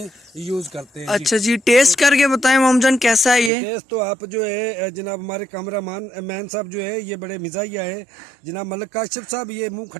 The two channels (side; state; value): left; drops out; at 3.5 s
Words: यूज़ करते हैं। अच्छा जी, टेस्ट करके बताएं मोमजान कैसा है ये? टेस्ट तो आप जो है जनाब हमारे मैन साहब जो है ये बड़े मिजाजिया है जनाब मलिक काशिफ साहब, ये मुंह